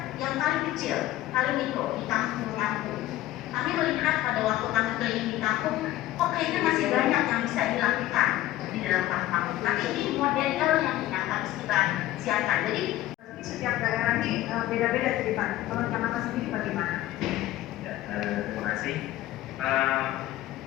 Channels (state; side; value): quieter; right; 15.0 dB